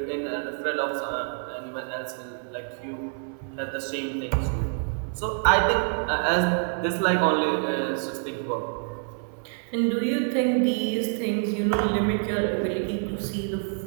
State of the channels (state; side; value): silent; left; 60 dB below the other